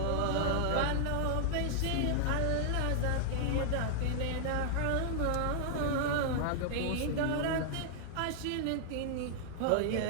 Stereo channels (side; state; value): both; different; correlation 0.00